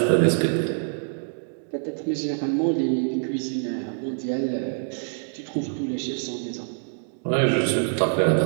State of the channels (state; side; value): silent; left; digital silence